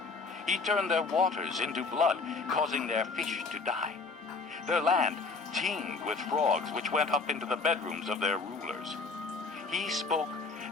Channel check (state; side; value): quieter; right; 4.1 dB